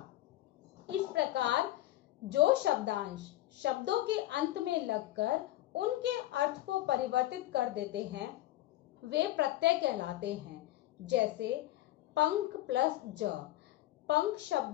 इस प्रकार जो शब्दांश शब्दों के अंत में लगकर उनके अर्थ को परिवर्तित कर देते हैं वे प्रत्यय कहलाते हैं। जैसे पंख प्लस ज। पंख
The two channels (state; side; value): quieter; right; 15.6 dB